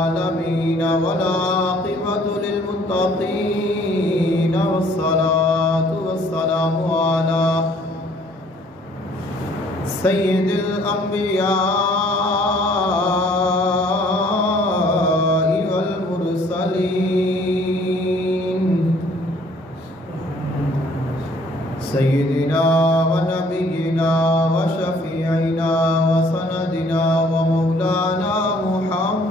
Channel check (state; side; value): normal; both; correlation 0.58